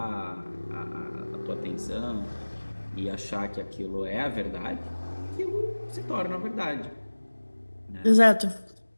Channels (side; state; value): both; inverted; correlation -1.00